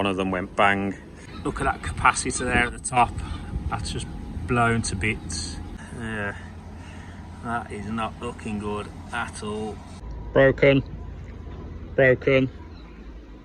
of them went bang. Look at that capacitor there at the top. That's just blown to bits. Yeah, that is not looking good at all. Broken, broken,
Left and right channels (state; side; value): identical; both; correlation 1.00